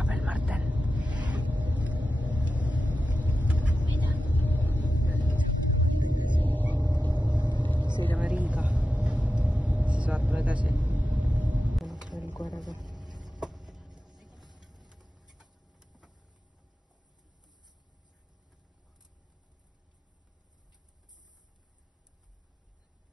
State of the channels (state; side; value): normal; both; correlation 0.92